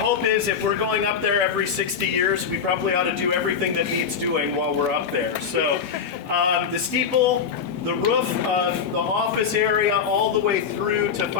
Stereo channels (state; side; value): quieter; right; 6.7 dB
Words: is, if we're going up there every 60 years, we probably ought to do everything that needs doing while we're up there. So the steeple, the roof of the office area, all the way through to